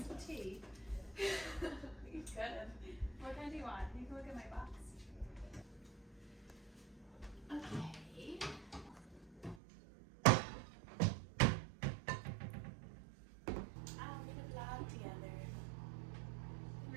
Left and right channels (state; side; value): drops out; left; at 9.6 s